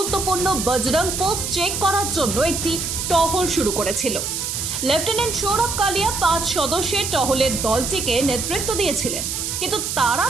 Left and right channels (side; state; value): right; noise; hiss, 3 dB below the sound